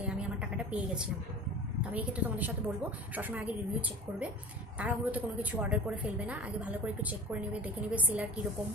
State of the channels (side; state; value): both; normal; correlation 0.38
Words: আমি আমার টাকাটা পেয়ে গেছিলাম। তো আমি এক্ষেত্রে তোমাদের সাথে বলবো সবসময় আগে রিভিউ চেক করবে, তাড়াহুড়োতে কোনো কিছু অর্ডার করে ফেলবে না, আগে ভালো করে একটু চেক করে নেবে, দেখে নেবে সেলার কীরকম।